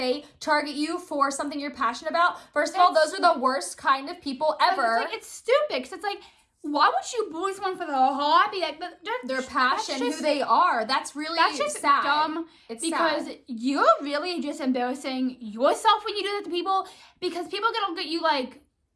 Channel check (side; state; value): both; identical; correlation 1.00